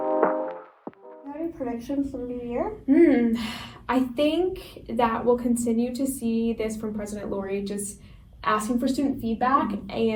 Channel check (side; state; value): both; identical; correlation 1.00